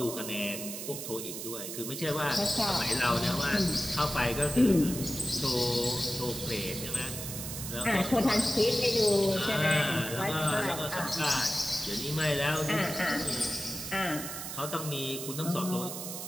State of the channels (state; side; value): noise; right; hiss, 7 dB below the sound